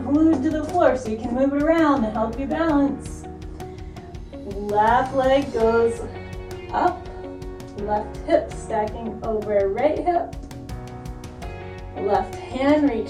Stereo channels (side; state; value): both; identical; correlation 1.00